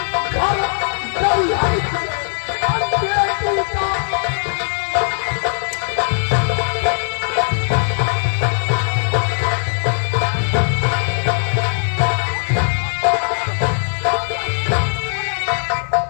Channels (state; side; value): silent; right; digital silence